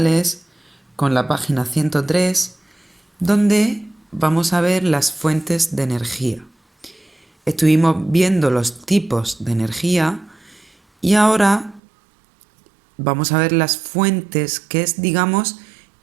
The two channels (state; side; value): drops out; left; at 11.8 s